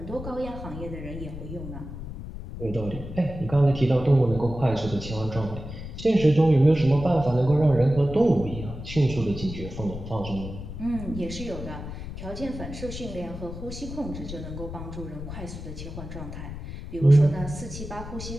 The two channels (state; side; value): noise; left; rumble, 9 dB below the sound